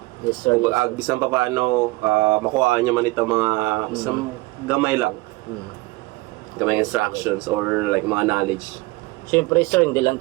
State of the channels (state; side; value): quieter; left; 22.0 dB